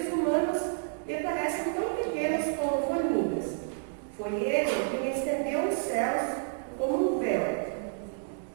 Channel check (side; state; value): left; silent; digital silence